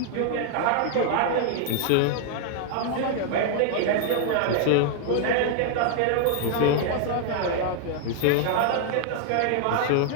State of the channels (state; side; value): different; both; correlation 0.00